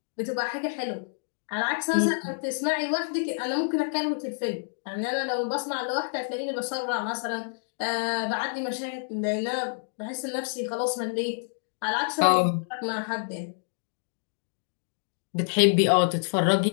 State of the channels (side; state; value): right; silent; digital silence